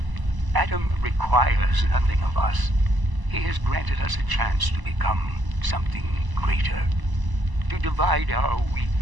Adam requires nothing of us. He has granted us a chance to become something greater. To divide our weak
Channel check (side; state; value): left; late; 1.0 ms